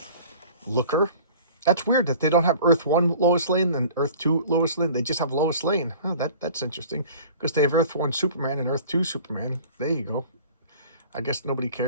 Looker. That's weird that they don't have Earth 1 Lois Lane and Earth 2 Lois Lane. They just have Lois Lane. Oh, that's interesting, because they have Earth 1 Superman and Earth 2 Superman. There you go. I guess nobody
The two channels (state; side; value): inverted; both; correlation -0.45